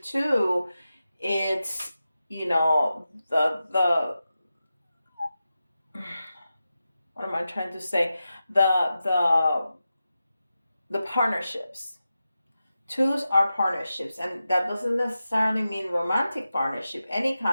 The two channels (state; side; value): inverted; both; correlation -0.92